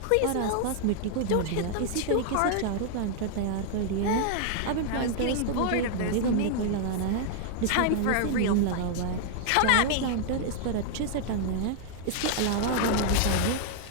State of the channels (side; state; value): both; different; correlation -0.01